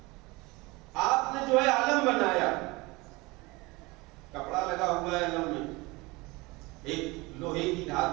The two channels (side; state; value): left; quieter; 23.5 dB